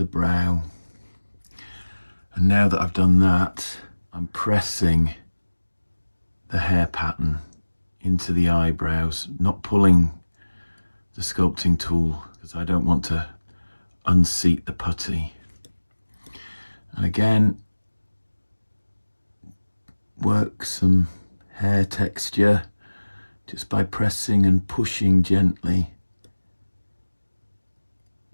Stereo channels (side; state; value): both; inverted; correlation -1.00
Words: brow. And now that I've done that, I'm pressing the hair pattern into the eyebrows, not pulling the sculpting tool because I don't want to unseat the putty. And again, work some hair texture just by pressing and pushing gently.